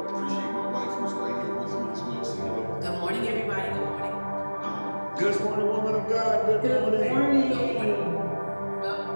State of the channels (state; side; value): inverted; both; correlation -1.00